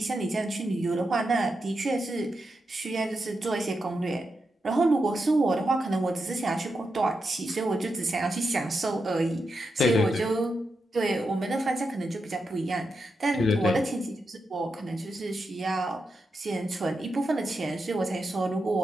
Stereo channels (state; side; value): normal; both; correlation 0.86